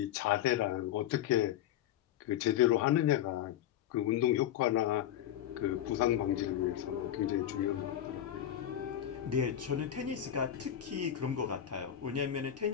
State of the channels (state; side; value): quieter; right; 11.0 dB